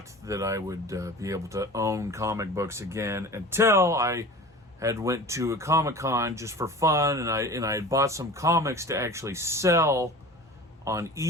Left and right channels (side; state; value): both; normal; correlation 0.37